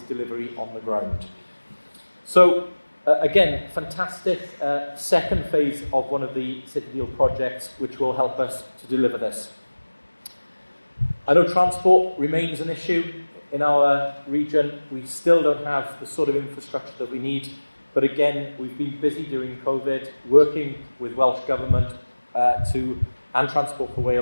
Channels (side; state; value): both; inverted; correlation -1.00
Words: on the ground. So again, fantastic second phase of one of the City Deal projects, which will help us to deliver this. I know transport remains an issue in our region. We still don't have the sort of infrastructure that we need, But again, we've been busy during COVID, working with Welsh Government and Transport for